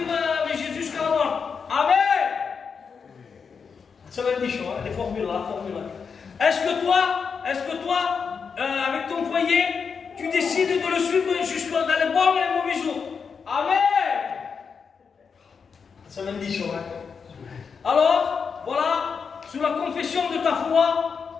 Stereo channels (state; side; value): quieter; right; 5.9 dB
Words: avec Jésus jusqu'à la mort? Amen. Ça va être des choses, hein, les formules là, Est-ce que toi, avec ton foyer, tu décides de le suivre jusqu'à dans les bons et les mauvais jours? Amen. Ça va être des choses, hein. Alors, voilà, sous la confession de ta foi,